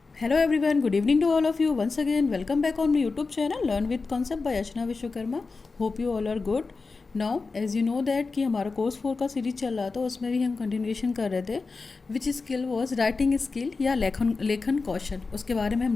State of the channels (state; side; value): quieter; right; 4.2 dB